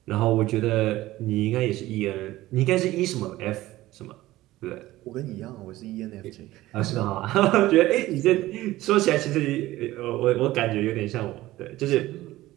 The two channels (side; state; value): left; quieter; 16.8 dB